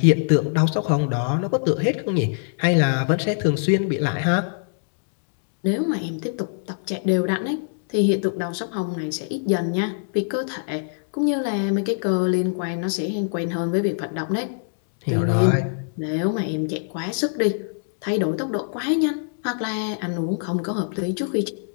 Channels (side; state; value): right; silent; digital silence